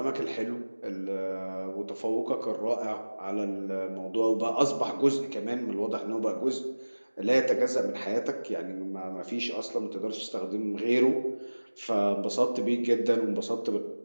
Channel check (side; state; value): both; inverted; correlation -1.00